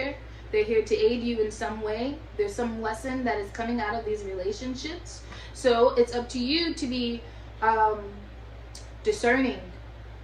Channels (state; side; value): identical; both; correlation 1.00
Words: They're here to aid you in some way. There's some lesson that is coming out of these relationships. So it's up to you to be discerning,